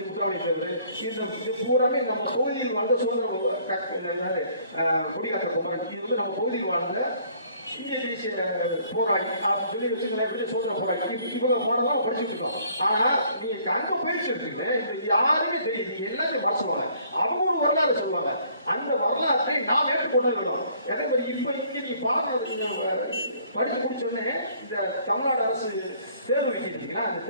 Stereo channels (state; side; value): inverted; both; correlation -0.60